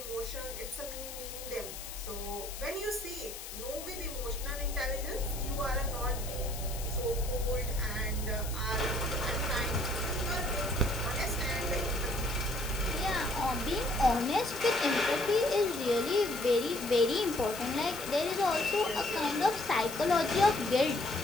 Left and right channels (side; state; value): left; noise; hiss, 10 dB below the sound